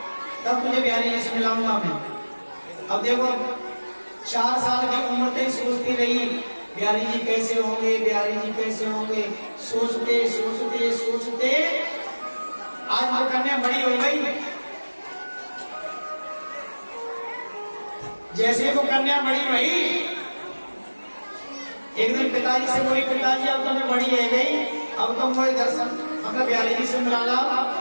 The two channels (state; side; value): inverted; both; correlation -1.00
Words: तब तुझे बिहारी जी से मिलाऊंगा मैं। अब देखो 4 साल की उम्र तक सोचती रही बिहारी जी कैसे होंगे, बिहारी जी कैसे होंगे, सोचते सोचते सोचते आज वो कन्या बड़ी हो गई। जैसे वो कन्या बड़ी हुई, एक दिन पिताजी से बोली, पिताजी अब तो मैं बड़ी है गई, अब तो मुझे दर्शन मतलब बिहारी जी से मिला ला।